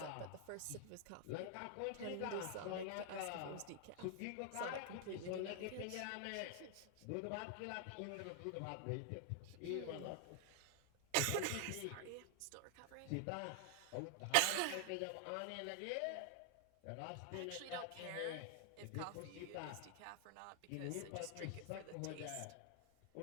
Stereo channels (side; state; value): both; different; correlation 0.00